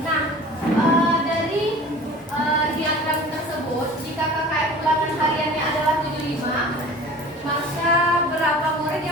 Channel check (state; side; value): normal; both; correlation 0.41